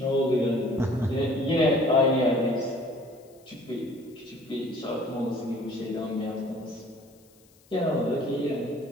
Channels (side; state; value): left; noise; hiss, 30 dB below the sound